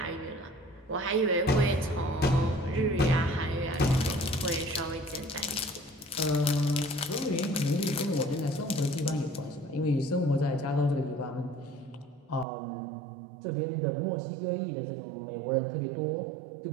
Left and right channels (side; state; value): left; drops out; at 12.5 s